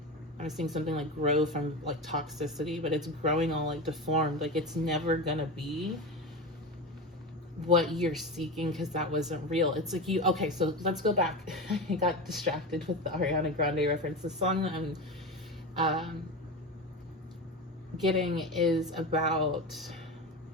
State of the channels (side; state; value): both; normal; correlation 0.23